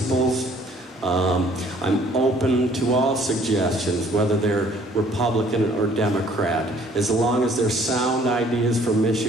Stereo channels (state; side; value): normal; both; correlation 0.58